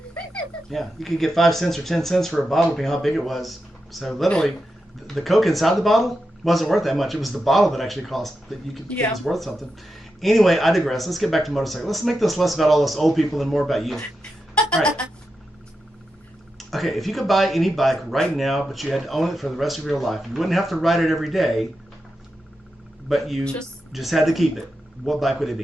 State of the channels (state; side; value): normal; both; correlation 0.88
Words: Yeah, you could get 5 cents or 10 cents for a bottle, depending on how big it was. So literally, the Coke inside the bottle wasn't worth that much. It was the bottle that actually cost that you could think was worth something. Anyway, I digress. Let's get back to motorcycles. Let's make this less about all us old people and more about you. All right. Okay, if you could buy any bike right now, but you had to own it for the rest of your life, you wouldn't have to ride it every day, but you just had to keep it. What bike would it